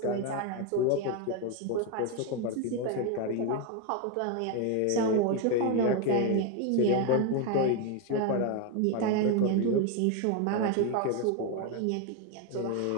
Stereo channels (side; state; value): both; different; correlation 0.01